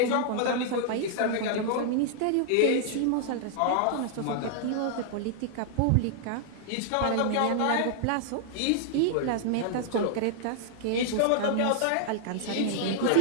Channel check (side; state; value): both; different; correlation -0.01